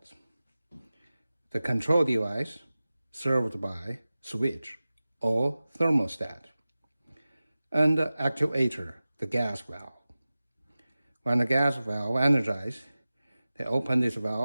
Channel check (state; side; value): inverted; both; correlation -0.96